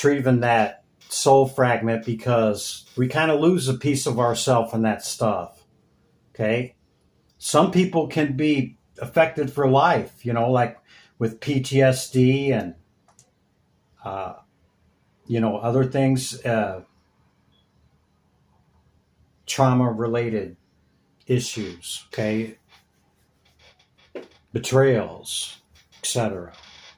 that soul fragment, because we kind of lose a piece of ourself in that stuff, okay? Some people can be affected for life, like with PTSD and, other things, trauma-related issues, okay? Betrayals, etc.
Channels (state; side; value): identical; both; correlation 1.00